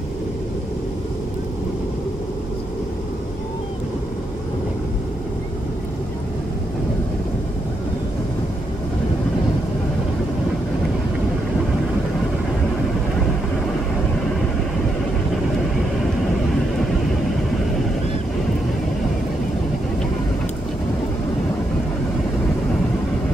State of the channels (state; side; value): normal; both; correlation 0.80